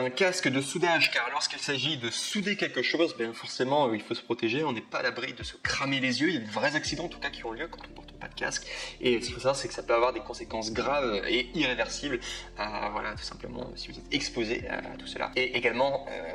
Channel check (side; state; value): both; identical; correlation 1.00